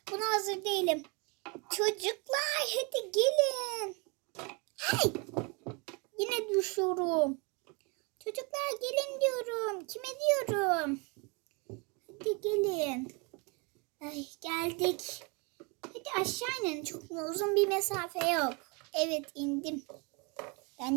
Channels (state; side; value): quieter; left; 31.1 dB